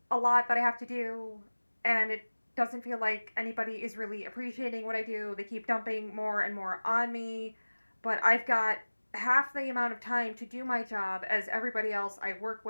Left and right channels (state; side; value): inverted; both; correlation -1.00